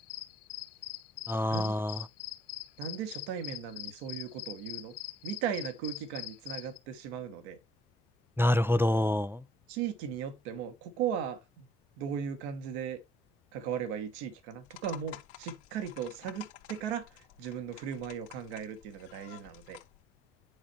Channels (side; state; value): both; normal; correlation 0.59